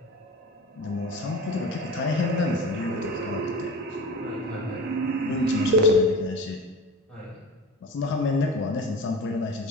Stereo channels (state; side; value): normal; both; correlation 0.34